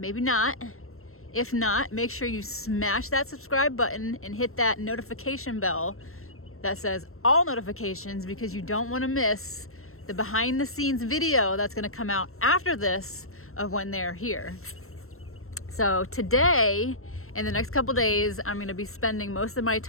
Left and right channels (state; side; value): late; right; 0.62 ms